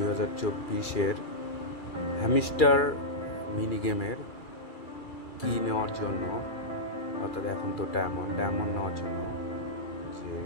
hamster mini গেমের কি নেওয়ার জন্য, অর্থাৎ এখন তো ডায়মন্ড নেওয়ার জন্য যে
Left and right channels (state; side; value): late; right; 2.3 ms